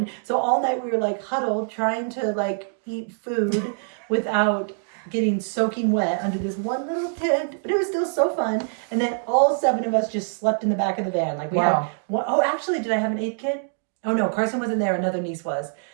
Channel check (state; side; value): silent; left; digital silence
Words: So all night we were like huddled, trying to like eat food without getting soaking wet under this one little tent. But it was still so fun. And then all 7 of us just slept in the back of the van. Like we had one, oh, actually, did I have an 8th kid? Oh no, Carson wasn't there. Another niece was.